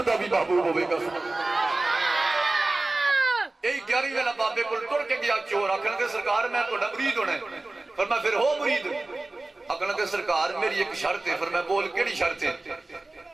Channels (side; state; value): left; quieter; 3.0 dB